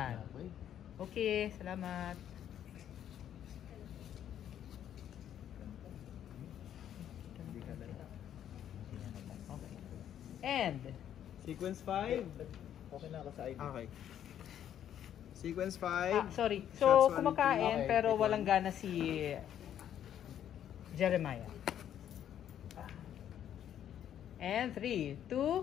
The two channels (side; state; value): right; quieter; 10.2 dB